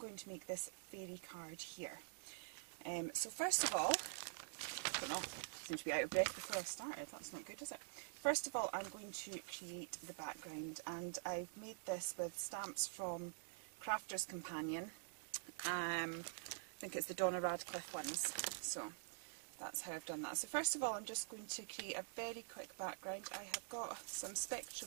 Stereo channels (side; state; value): left; silent; digital silence